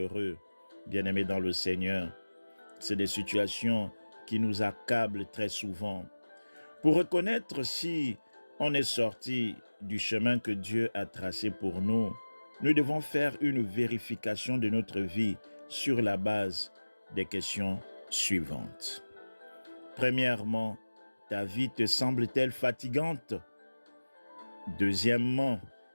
Bien-aimés dans le Seigneur, c'est des situations qui nous accablent très souvent. Pour reconnaître si on est sorti du chemin que Dieu a tracé pour nous, nous devons faire une vérification de notre vie sur la base des questions suivantes. Premièrement, ta vie te semble-t-elle fatigante? Deuxièmement,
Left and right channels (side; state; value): both; inverted; correlation -1.00